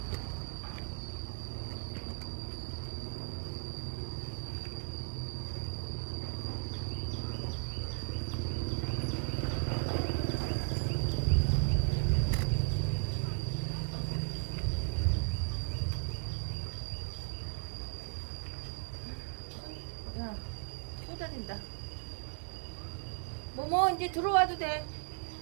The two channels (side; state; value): left; silent; 54 dB below the other